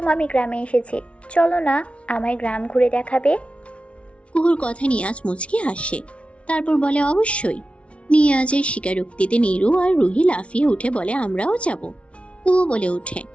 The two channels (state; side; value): late; right; 0.061 ms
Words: আমি গ্রামে এসেছি, চলো না আমায় গ্রাম ঘুরে দেখাবে। কুহুর কথায় নিয়াজ মুচকি হাসে। তারপর বলে, অবশ্যই। নিয়াজের স্বীকারোক্তিতে নিরু আর রুহি লাফিয়ে উঠে বলে, আমরাও যাব। কুহু বলে ওঠে,